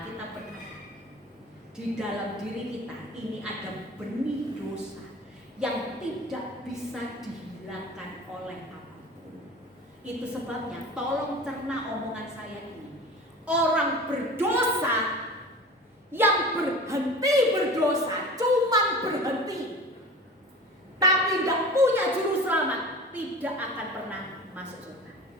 berkata, di dalam diri kita ini ada benih dosa yang tidak bisa dihilangkan oleh apapun. Itu sebabnya tolong cerna omongan saya ini. Orang berdosa yang berhenti berdosa, cuman berhenti, tapi tidak punya juru selamat, tidak akan pernah masuk surga.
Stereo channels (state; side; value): normal; both; correlation 0.37